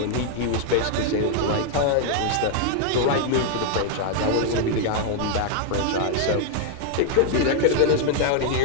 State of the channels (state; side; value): different; both; correlation 0.00